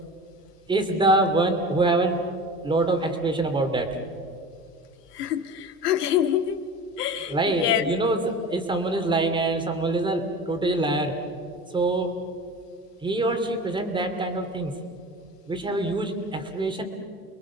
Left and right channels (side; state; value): both; normal; correlation 0.34